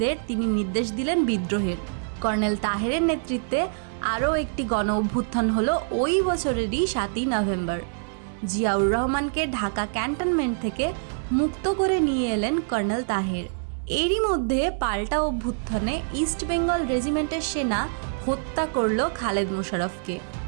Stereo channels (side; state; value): left; silent; 61 dB below the other